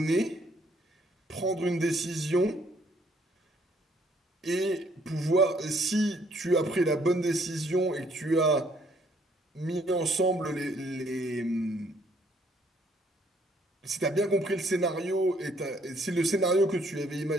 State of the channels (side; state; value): both; normal; correlation 0.66